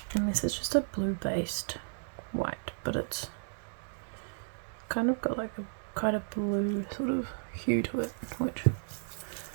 and this is just a blue based white, but it's kind of got like a quite a blue sort of hue to it, which,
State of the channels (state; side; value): silent; left; digital silence